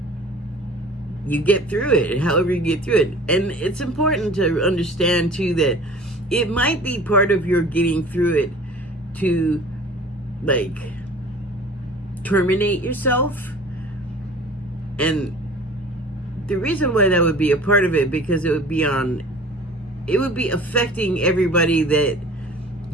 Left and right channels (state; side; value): normal; both; correlation 0.44